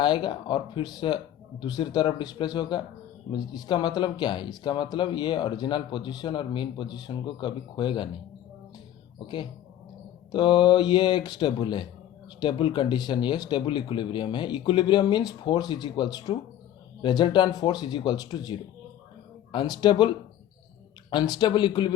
और फिर से दूसरी तरफ डिस्प्लेस होगा। इसका मतलब क्या है? इसका मतलब ये ओरिजिनल पोजीशन और मीन पोजीशन को कभी खोएगा नहीं। ओके, तो ये एक स्टेबल है, स्टेबल कंडीशन, ये स्टेबल इक्विलिब्रियम है। Equilibrium means force is equals to resultant force is equals to zero. Unstable unstable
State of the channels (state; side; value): quieter; right; 11.7 dB